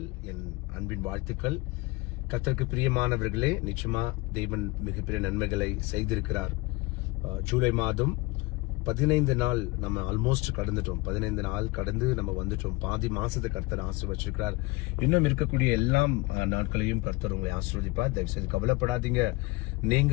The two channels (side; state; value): right; quieter; 23.3 dB